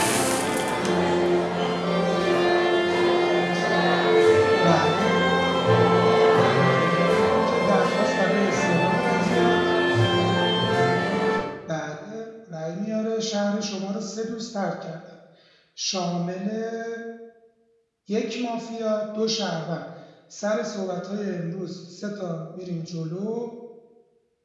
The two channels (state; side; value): identical; both; correlation 1.00